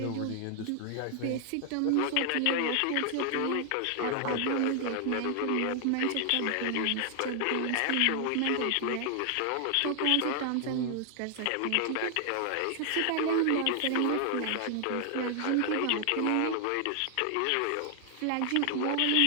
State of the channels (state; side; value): different; both; correlation 0.00